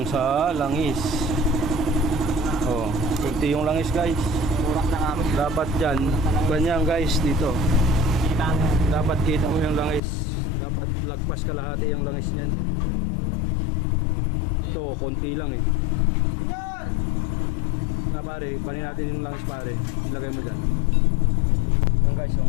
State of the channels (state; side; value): drops out; right; at 10.0 s